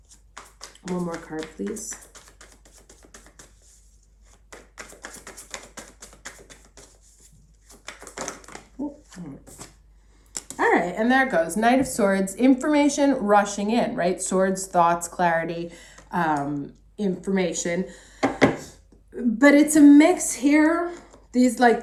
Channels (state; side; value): identical; both; correlation 1.00